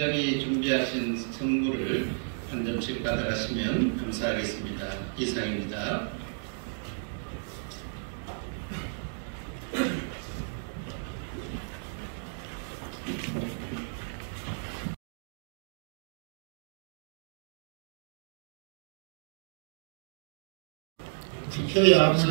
준비하신 선물을 한 점씩 받아가시면 감사하겠습니다. 이상입니다. 투표에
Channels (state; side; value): silent; left; digital silence